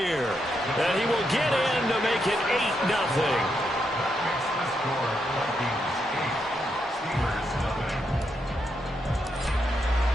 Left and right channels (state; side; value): normal; both; correlation 0.81